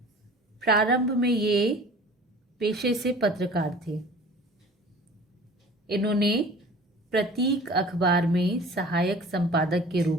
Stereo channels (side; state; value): both; normal; correlation 0.44